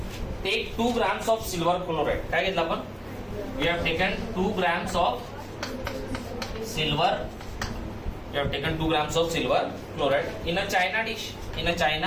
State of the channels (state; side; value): identical; both; correlation 1.00